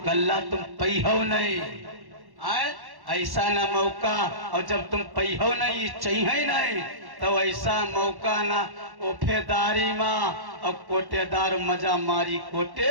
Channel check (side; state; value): left; late; 1.1 ms